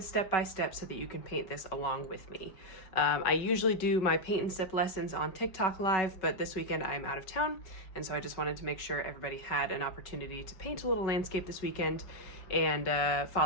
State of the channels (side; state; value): right; late; 5.3 ms